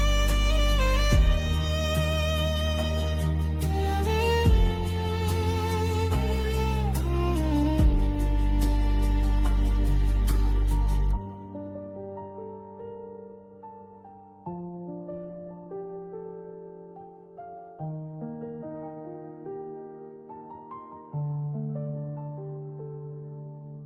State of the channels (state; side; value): identical; both; correlation 1.00